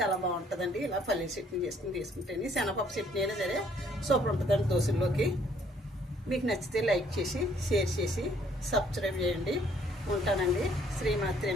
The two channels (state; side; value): normal; both; correlation 0.63